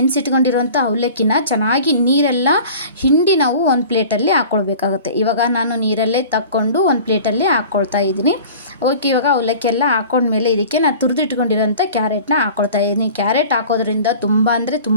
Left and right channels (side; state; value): both; inverted; correlation -0.42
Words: ಅವಲಕ್ಕಿನ ಚೆನ್ನಾಗಿ ನೀರೆಲ್ಲ ಹಿಂಡಿ ನಾವು ಒಂದು ಪ್ಲೇಟಲ್ಲಿ ಹಾಕ್ಕೊಳ್ಬೇಕಾಗುತ್ತೆ. ಇವಾಗ ನಾನು ನೀರಲ್ಲೇ ತಕ್ಕೊಂಡು ಒಂದು ಪ್ಲೇಟಲ್ಲಿ ಹಾಕ್ಕೊಳ್ತಾ ಇದ್ದೀನಿ. ಓಕೆ, ಇವಾಗ ಅವಲಕ್ಕಿ ಎಲ್ಲ ಹಾಕ್ಕೊಂಡ್ಮೇಲೆ ಇದಕ್ಕೆ ನಾನು ತುರಿದಿಟ್ಕೊಂಡಿರೋಂಥ ಕ್ಯಾರೆಟ್ನ ಹಾಕ್ಕೊಳ್ತಾ ಇದ್ದೀನಿ. ಕ್ಯಾರೆಟ್ ಹಾಕೋದ್ರಿಂದ ತುಂಬ ಅಂದರೆ